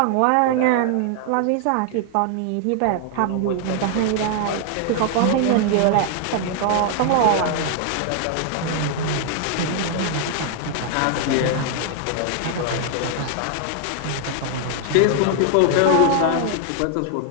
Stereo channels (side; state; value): both; different; correlation 0.00